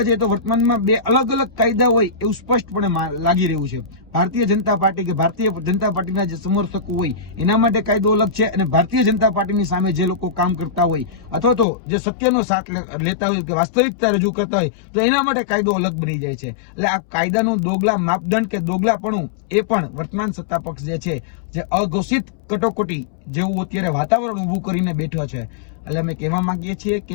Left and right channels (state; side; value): drops out; right; at 11.7 s